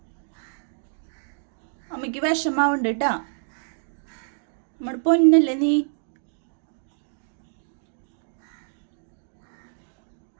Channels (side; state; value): left; silent; digital silence